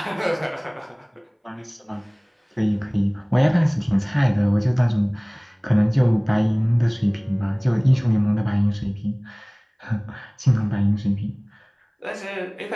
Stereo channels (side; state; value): both; identical; correlation 1.00